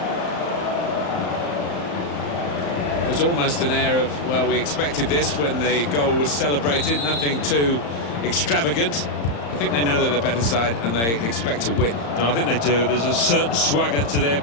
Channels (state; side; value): late; right; 35 ms